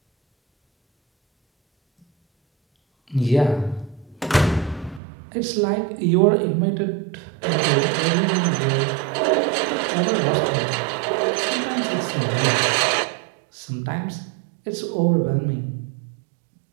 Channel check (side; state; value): left; drops out; at 5.0 s